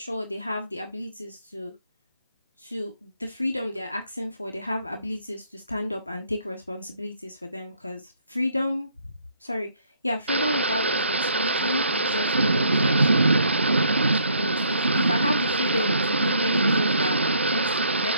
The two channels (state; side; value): inverted; both; correlation -0.65